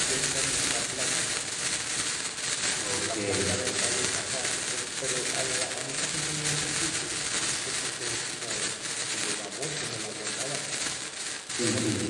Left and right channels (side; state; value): both; identical; correlation 1.00